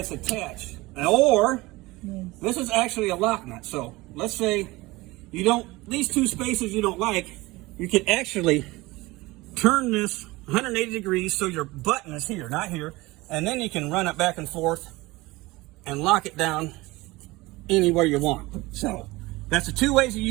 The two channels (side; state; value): left; quieter; 21.0 dB